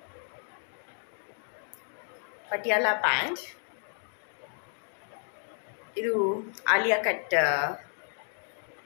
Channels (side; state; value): right; silent; digital silence